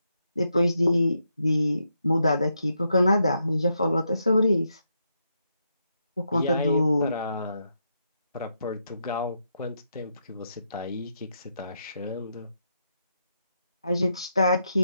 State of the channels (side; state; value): both; inverted; correlation -0.81